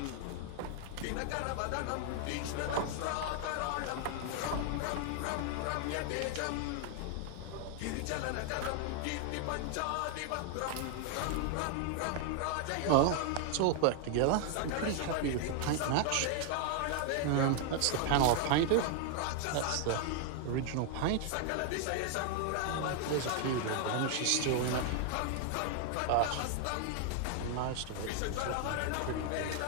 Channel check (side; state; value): both; different; correlation 0.00